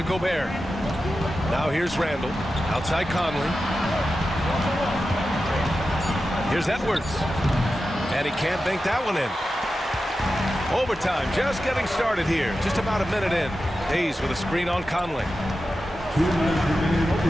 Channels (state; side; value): normal; both; correlation 0.92